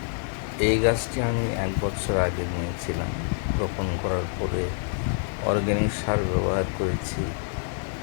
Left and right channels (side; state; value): right; silent; 61 dB below the other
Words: এই গাছটি আমি 1 বছর আগে নিয়েছিলাম। রোপণ করার পরে অর্গ্যানিক সার ব্যবহার করেছি।